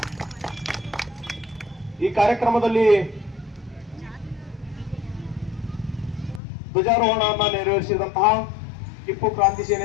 ಈ ಕಾರ್ಯಕ್ರಮದಲ್ಲಿ ಧ್ವಜಾರೋಹಣವನ್ನು ನೆರವೇರಿಸಿದಂತಹ ಟಿಪ್ಪು ಕ್ರಾಂತಿ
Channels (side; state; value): right; drops out; at 6.4 s